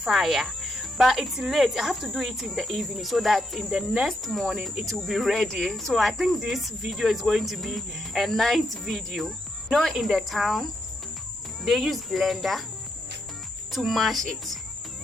But it's late, I have to do it in the evening so that in the next morning it will be ready. So I think this video is going to be a night video. You know, in the town they use blender to mash it,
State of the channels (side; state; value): both; normal; correlation 0.80